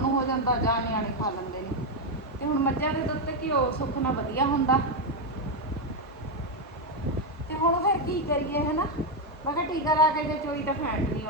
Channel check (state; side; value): normal; both; correlation 0.04